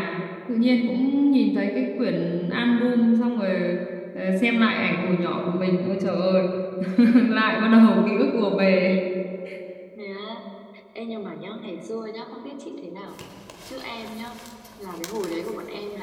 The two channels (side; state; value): both; identical; correlation 1.00